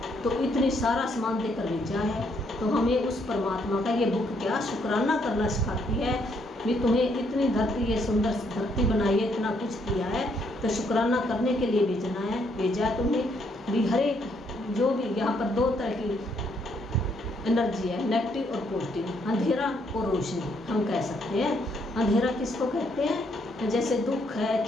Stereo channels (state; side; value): normal; both; correlation 0.72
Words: तो इतनी सारा सामान देकर भेजा है, तो हमें उस परमात्मा का ये बुक क्या शुक्राना करना सिखाती है भी। तुम्हें इतनी धरती, ये सुंदर धरती बनाई है, इतना कुछ किया है, तो शुक्राना करने के लिए भेजा है तुम्हें भी। हर एक जो भी यहाँ पर दो तरह की एनर्जी है, नेगेटिव और पॉजिटिव, अंधेरा और रोशनी हम कह सकते हैं। अंधेरा किसको कहते हैं, जैसे दुख है,